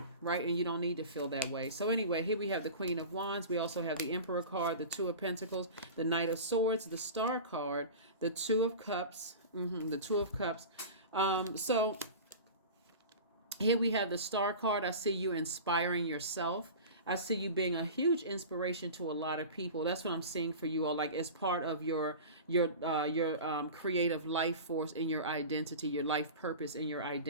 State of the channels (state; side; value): inverted; both; correlation -0.33